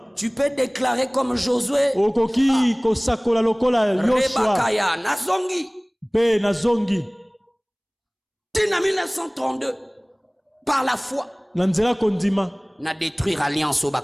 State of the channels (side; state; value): both; identical; correlation 1.00